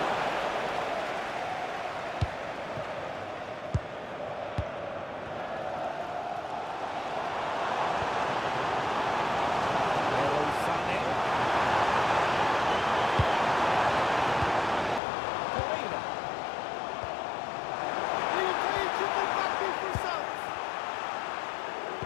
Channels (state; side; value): drops out; right; at 15.0 s